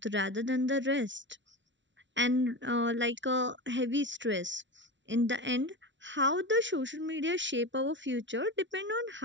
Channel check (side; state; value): left; late; 0.54 ms